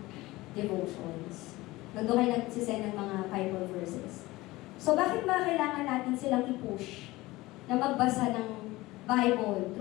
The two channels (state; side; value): quieter; right; 19.5 dB